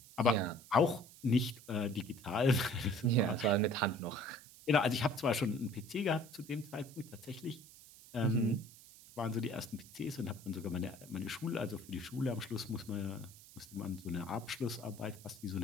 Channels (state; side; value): noise; right; hiss, 20 dB below the sound